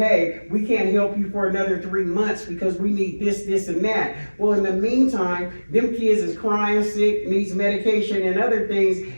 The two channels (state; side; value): inverted; both; correlation -1.00